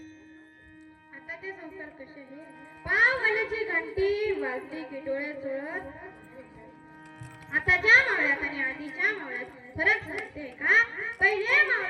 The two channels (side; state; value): both; identical; correlation 1.00